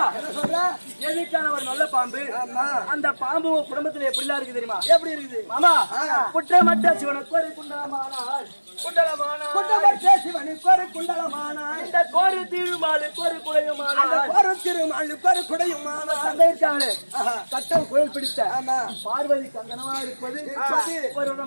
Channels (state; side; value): inverted; both; correlation -1.00